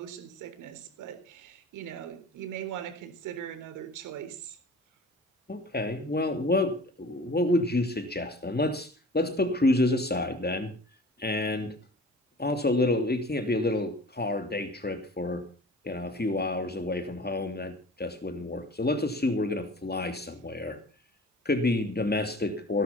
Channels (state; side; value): normal; both; correlation 0.43